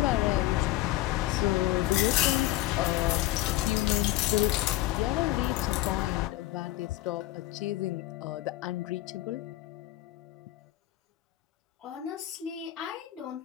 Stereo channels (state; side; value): quieter; right; 15.6 dB